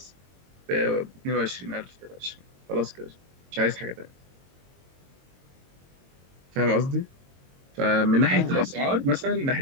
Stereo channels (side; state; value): left; late; 22 ms